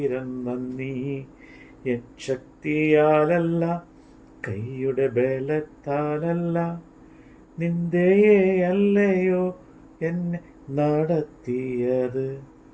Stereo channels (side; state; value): both; identical; correlation 1.00